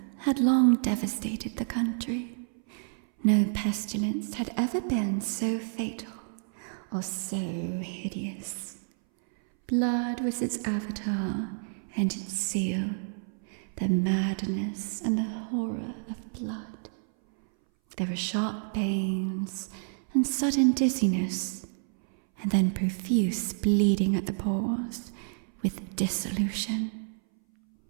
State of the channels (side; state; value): left; silent; 58 dB below the other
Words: had long devastated the country. No pestilence had ever been so fatal or so hideous. Blood was its avatar and its seal, the madness and the horror of blood. There were sharp pains and sudden dizziness, and then profuse bleeding at the pores with dissolution.